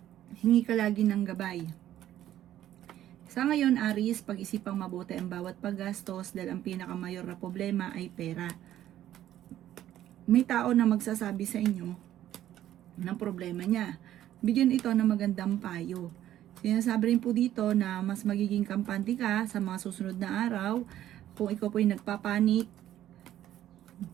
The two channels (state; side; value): quieter; left; 12.4 dB